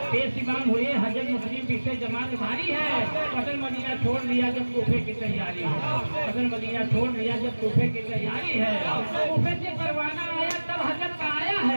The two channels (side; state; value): both; inverted; correlation -1.00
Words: बेसीमान हुए हजरत मुस्लिम पीछे जमात भारी है। अगर मदीना छोड़ दिया जब कूफे की तैयारी है, अगर मदीना छोड़ दिया जब कूफे की तैयारी है। कूफे से परवाना आया तब हजरत का आया